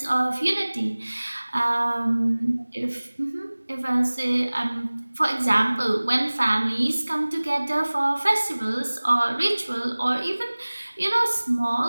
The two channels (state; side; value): inverted; both; correlation -1.00